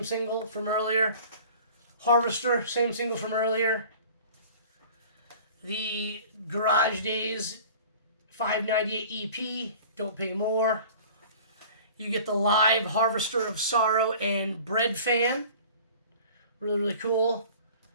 single from earlier. Harvester, same single from earlier. The Garage Days 598 EP, Don't Pay More. You get the live Harvester of Sorrow and Bread Fan. Really, really cool.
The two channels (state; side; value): inverted; both; correlation -0.44